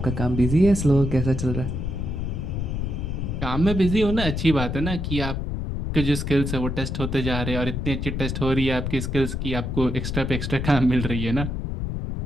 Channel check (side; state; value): left; noise; rumble, 3 dB below the sound